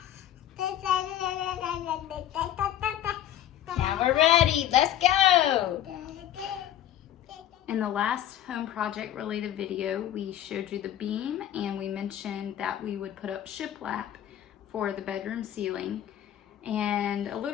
we're ready. Let's go. In the last home project related video, we showed you the beam and we mentioned that we would put up shiplap for the bedroom ceiling. And a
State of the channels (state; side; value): quieter; right; 11.5 dB